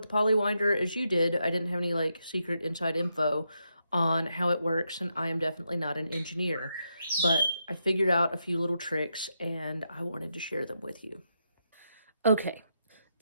the Paulywinder as you did. I didn't have any like secret inside info on how it works, and I am definitely not an engineer. But I figured out a few little tricks and I wanted to share them with you. Okay,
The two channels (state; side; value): inverted; both; correlation -0.82